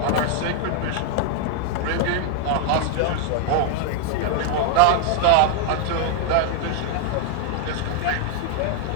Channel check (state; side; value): different; both; correlation 0.00